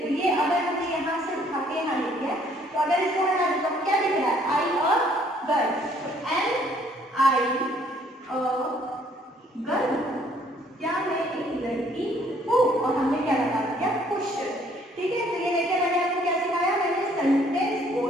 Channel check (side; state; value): both; normal; correlation 0.62